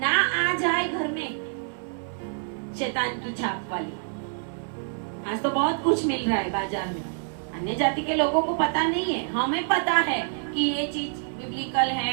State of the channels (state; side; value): silent; left; 60 dB below the other